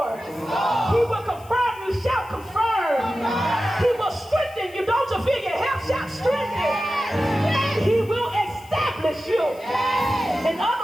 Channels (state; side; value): noise; left; hiss, 24 dB below the sound